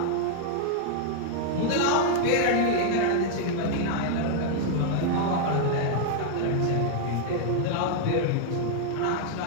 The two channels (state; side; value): different; both; correlation -0.01